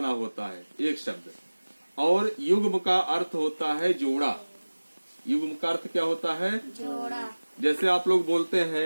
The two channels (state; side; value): inverted; both; correlation -1.00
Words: होता है एक शब्द, और युग्म का अर्थ होता है जोड़ा। युग्म का अर्थ क्या होता है? जोड़ा। जैसे आप लोग बोलते